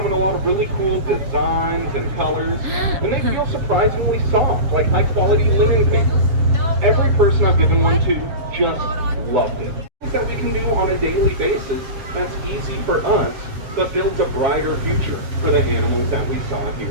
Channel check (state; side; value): late; left; 7.4 ms